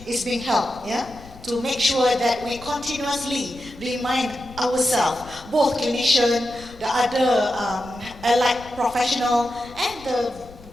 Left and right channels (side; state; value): left; noise; rumble, 20 dB below the sound